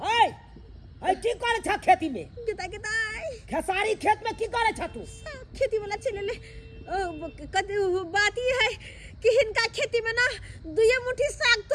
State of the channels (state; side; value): identical; both; correlation 1.00